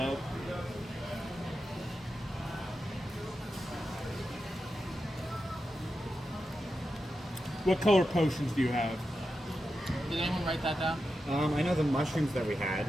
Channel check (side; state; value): both; normal; correlation 0.89